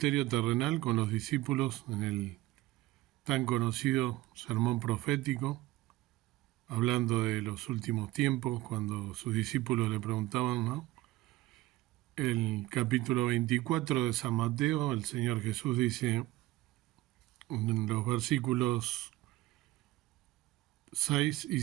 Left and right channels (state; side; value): quieter; left; 17.5 dB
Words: terrenal con los discípulos en el tan conocido sermón profético, hablando de los últimos tiempos, cuando sus discípulos le preguntaban, ¿no? El capítulo 24 de San Mateo, el Señor Jesús dice en los versículos 6 y